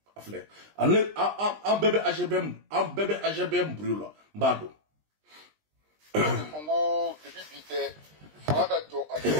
afle an bebe AGBM brûla mbado Congo depuis bité fanga ka to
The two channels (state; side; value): late; left; 20 ms